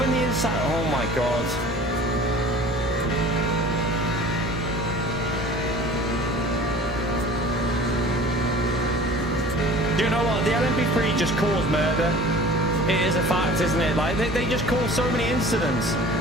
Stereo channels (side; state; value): both; normal; correlation 0.44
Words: the inside? Oh my god. Do you know what? The LMP3 just caused murder. It is a fact, isn't it? Like, they just cause so many incidents.